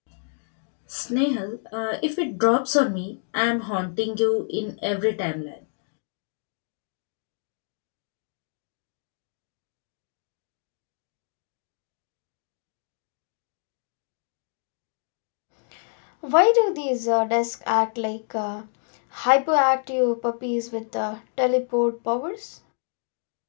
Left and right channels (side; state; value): right; silent; digital silence